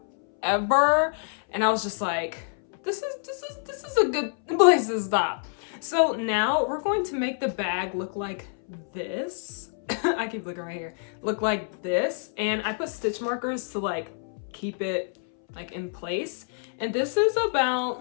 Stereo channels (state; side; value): silent; right; 60 dB below the other